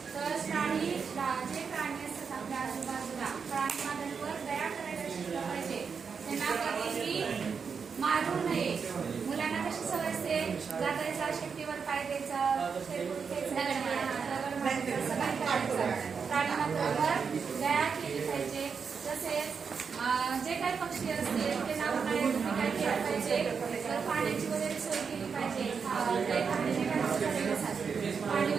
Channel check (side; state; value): left; quieter; 5.9 dB